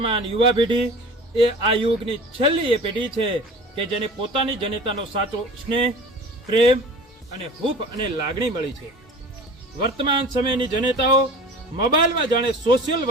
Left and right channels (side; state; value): both; normal; correlation 0.39